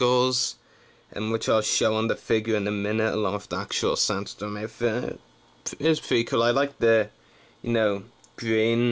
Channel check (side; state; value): both; identical; correlation 1.00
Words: which I'll show on the figure in a minute, along with the actual Sandstorm outfit. It's pretty cool. I like the,